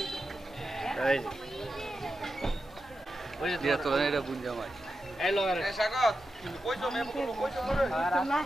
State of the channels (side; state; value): both; normal; correlation 0.90